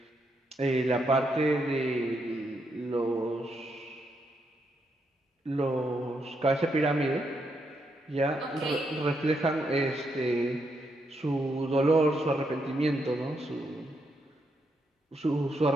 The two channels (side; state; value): both; normal; correlation 0.79